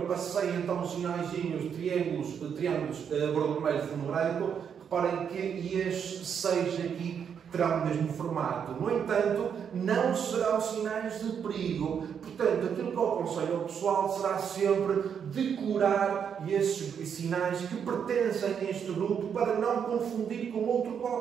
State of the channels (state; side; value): quieter; left; 7.6 dB